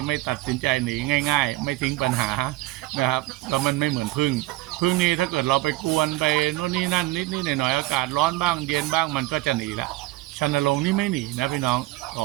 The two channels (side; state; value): left; quieter; 18.7 dB